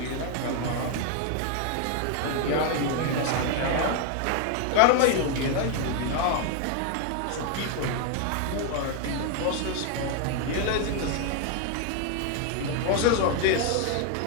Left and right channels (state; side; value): different; both; correlation 0.01